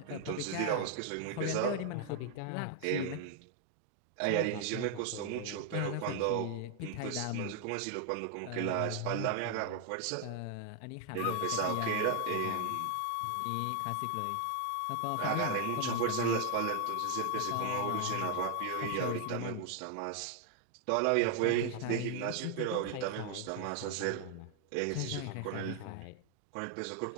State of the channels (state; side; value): different; both; correlation 0.00